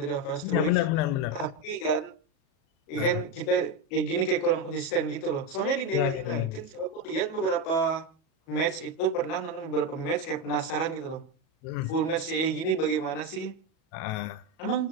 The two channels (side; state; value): right; late; 37 ms